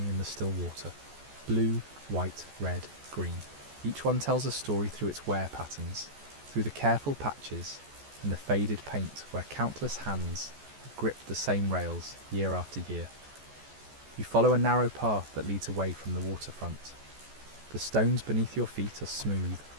in the still water. Blue, white, red, green. Each one tells a story through its wear patterns, through the careful patches and the faded paint where countless hands have gripped the same rails year after year. You follow a narrow path that leads away from the waterfront. The stones beneath your feet are smooth,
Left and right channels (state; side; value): late; left; 14 ms